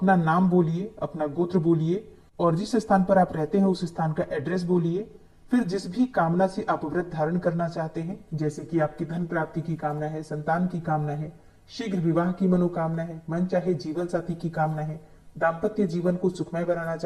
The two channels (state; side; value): identical; both; correlation 1.00